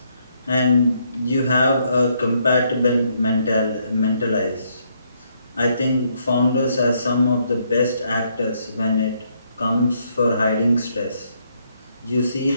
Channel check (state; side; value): inverted; both; correlation -0.73